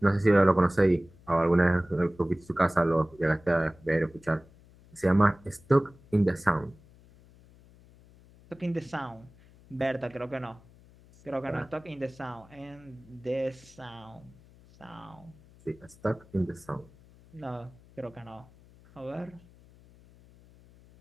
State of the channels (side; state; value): left; noise; hum, 25 dB below the sound